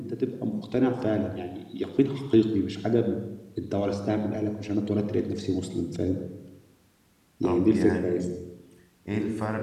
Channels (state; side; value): identical; both; correlation 1.00